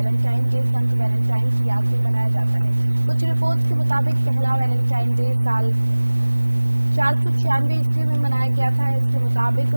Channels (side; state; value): both; inverted; correlation -1.00